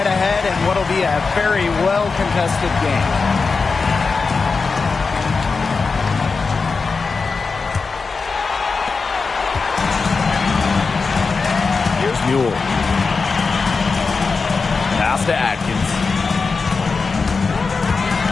ahead, and what'll be a very well-contested game. Here's Mule. Pass to Atkins.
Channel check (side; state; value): right; quieter; 4.6 dB